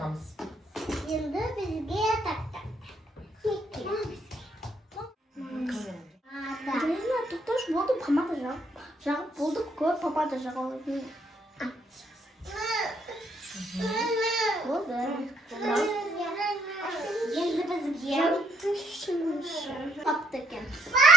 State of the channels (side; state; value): both; normal; correlation 0.71